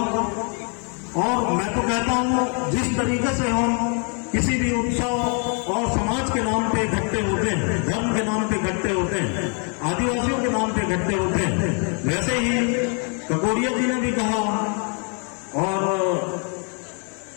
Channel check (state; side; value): quieter; right; 38.9 dB